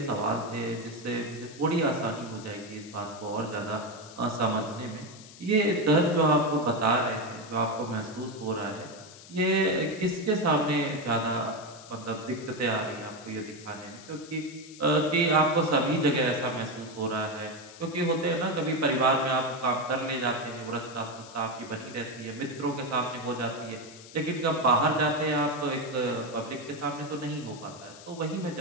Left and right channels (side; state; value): left; noise; hiss, 18 dB below the sound